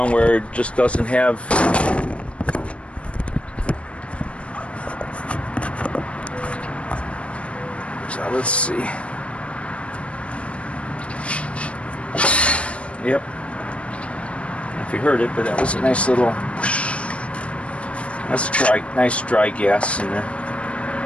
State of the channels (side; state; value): right; late; 0.061 ms